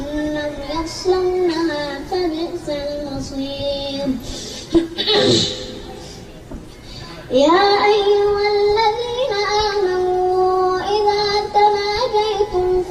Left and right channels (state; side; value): identical; both; correlation 1.00